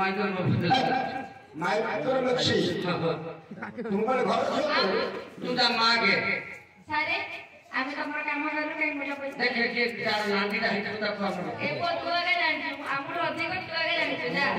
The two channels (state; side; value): identical; both; correlation 1.00